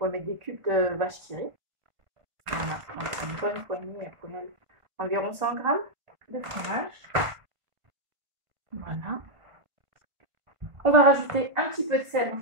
mettre des cubes de vache qui rit. Voilà, donc une bonne poignée, environ 100 grammes de fromage. Voilà. On va rajouter un petit peu de sel,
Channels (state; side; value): late; left; 1.5 ms